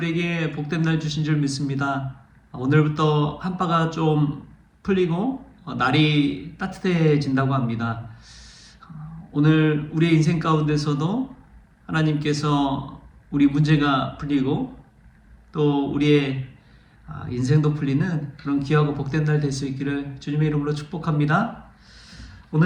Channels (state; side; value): identical; both; correlation 1.00